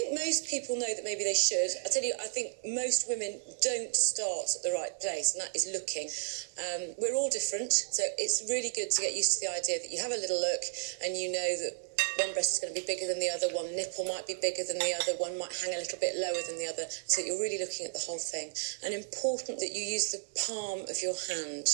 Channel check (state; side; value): silent; left; digital silence